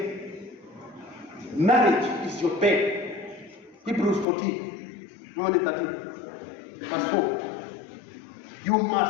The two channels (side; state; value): right; drops out; at 4.2 s